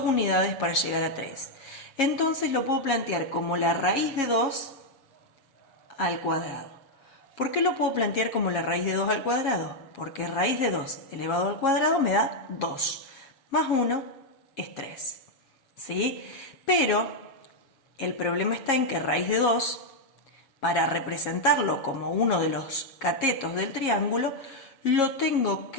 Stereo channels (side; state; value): right; late; 7.3 ms